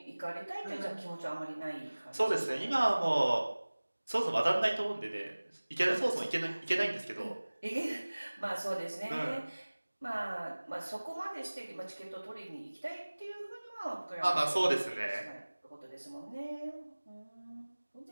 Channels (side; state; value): both; inverted; correlation -1.00